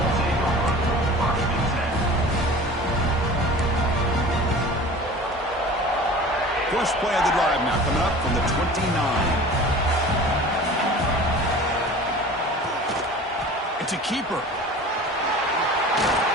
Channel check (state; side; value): normal; both; correlation 0.40